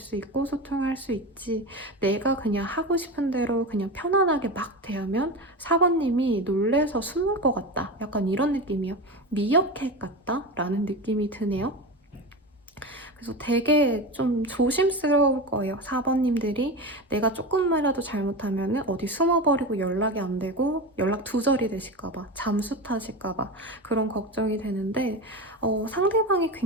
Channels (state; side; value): normal; both; correlation 0.23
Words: 있고 소통할 수 있지, 내가 그냥 하고 싶은 대로 그냥 편안하게 막 대하면 사번님이 놀래서 숨을 것 같다. 약간 이런 느낌이요. 미어캣 같다? 라는 느낌이 드네요. 그래서 되게 좀 조심스러울 거예요. 4번님들이 내가 조금만이라도 잘못하면 어디 숨어버리고 연락이 안 되고 연락 두절이 되실까봐, 잠수 타실까봐 그런 걱정이 되는데 상대방이